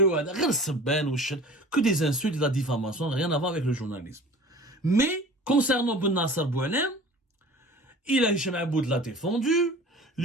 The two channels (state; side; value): normal; both; correlation 0.42